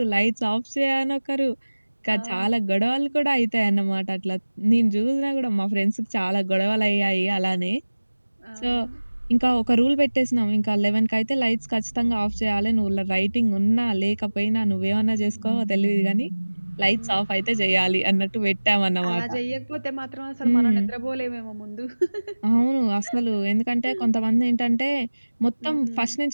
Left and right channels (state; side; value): inverted; both; correlation -1.00